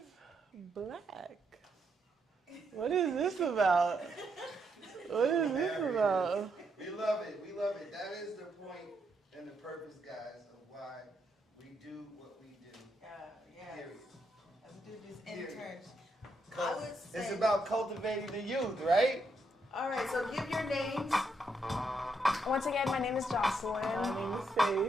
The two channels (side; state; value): both; normal; correlation 0.78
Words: black. What is this about? What is this about? We love it. We love it. That is the point and the purpose, guys, of why we do what we do. Yeah. Period. Let's do these Period. interns. I would say. It's about cultivating the youth, right? All right, so give your names. Once again, my name is Jocelyn. My name is